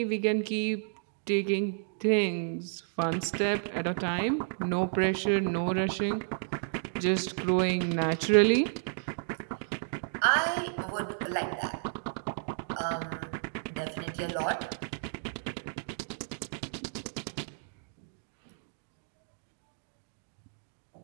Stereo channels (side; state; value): left; silent; digital silence